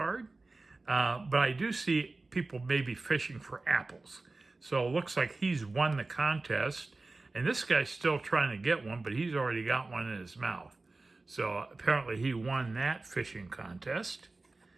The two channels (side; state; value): left; quieter; 3.4 dB